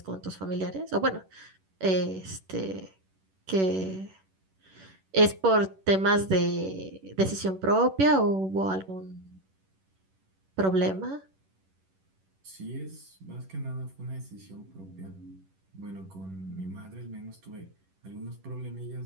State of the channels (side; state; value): left; late; 11 ms